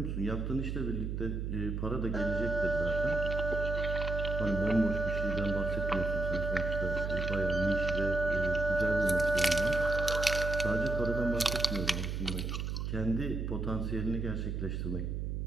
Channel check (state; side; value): noise; right; hum, 3 dB below the sound